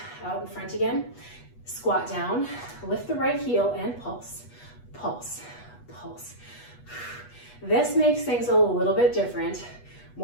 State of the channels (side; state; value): right; late; 8.2 ms